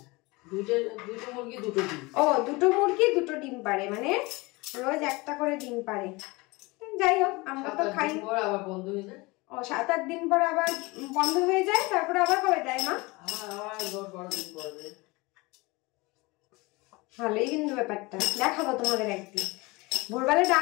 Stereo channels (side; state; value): right; quieter; 24.0 dB